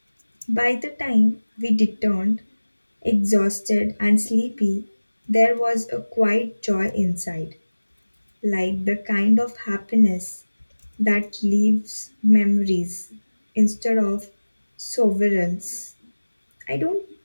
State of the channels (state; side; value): inverted; both; correlation -1.00